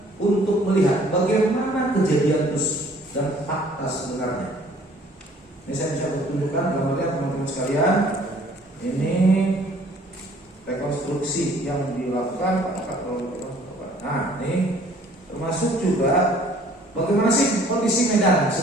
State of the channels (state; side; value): normal; both; correlation 0.56